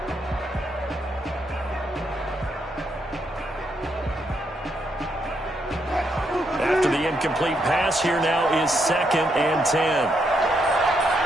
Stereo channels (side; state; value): both; normal; correlation 0.78